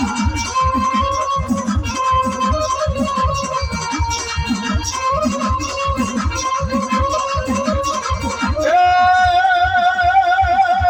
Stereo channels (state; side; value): identical; both; correlation 1.00